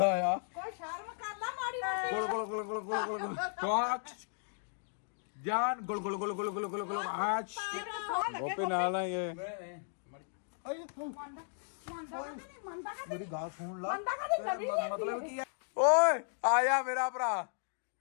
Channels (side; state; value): right; silent; digital silence